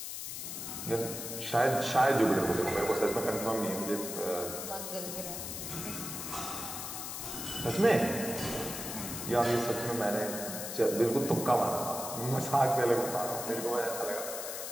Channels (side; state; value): left; noise; hiss, 6 dB below the sound